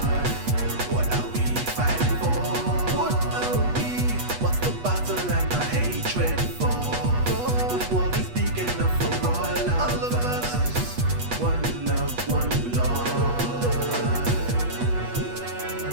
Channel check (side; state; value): left; late; 8.3 ms